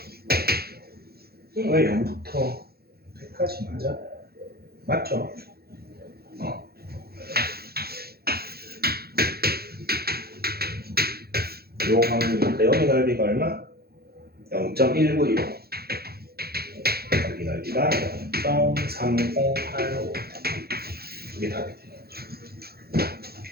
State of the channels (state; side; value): late; left; 0.46 ms